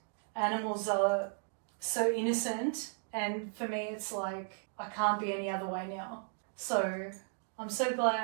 animals are so innocent. And for me, it's like, I can't be any other way now. So I'm so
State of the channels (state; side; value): silent; left; digital silence